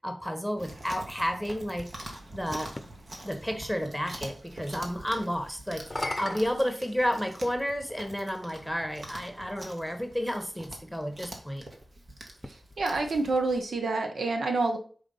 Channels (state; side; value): normal; both; correlation 0.94